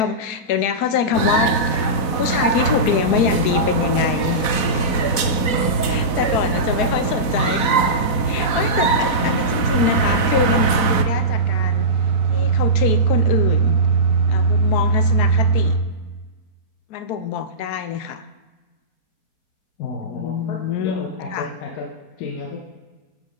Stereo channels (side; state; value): right; late; 4.0 ms